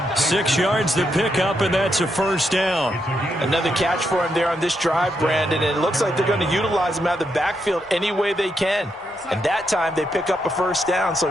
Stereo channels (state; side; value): normal; both; correlation 0.81